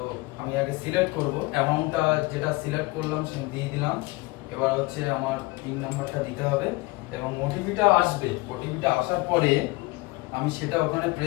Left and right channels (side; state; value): right; quieter; 23.0 dB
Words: আমি আগে সিলেক্ট করব, অ্যামাউন্টটা যেটা সিলেক্ট করলাম সে দিয়ে দিলাম। এবার হচ্ছে আমার পিন নাম্বারটা দিতে হবে এবং ওটিপিটা আসবে। ওটিপিটা আসার পরে আমি সেটা ওখানে